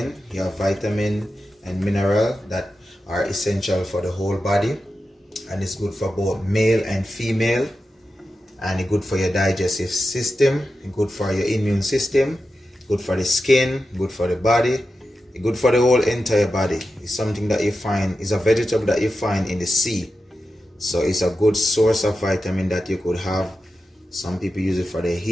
You have vitamin and mineral that are essential for the whole body, and it's good for both male and female, and it's good for your digestive system, good for your immune system, good for the skin, good for the body, good for the whole entire body. It's something that you find, is a vegetable that you find in the sea. So it's a good source of vitamin that you could have. Some people use it for their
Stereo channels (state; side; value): normal; both; correlation 0.91